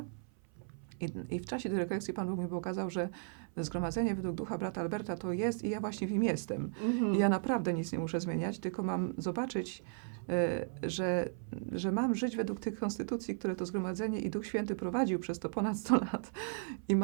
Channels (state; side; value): silent; left; 54 dB below the other